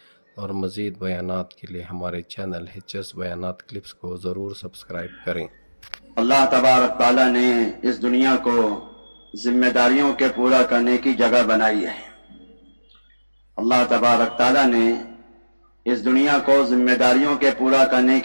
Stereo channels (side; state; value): both; inverted; correlation -1.00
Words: اور مزید بیانات کے لیے ہمارے چینل HS بیانات کلپس کو ضرور سبسکرائب کریں۔ اللہ تبارک تعالیٰ نے اس دنیا کو ذمہ داریوں کے پورا کرنے کی جگہ بنائی ہے۔ اللہ تبارک تعالیٰ نے اس دنیا کو ذمہ داریوں کے پورا کرنے